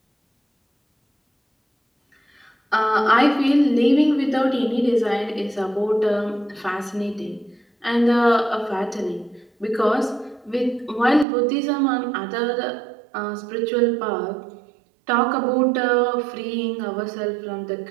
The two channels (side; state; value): left; drops out; at 11.2 s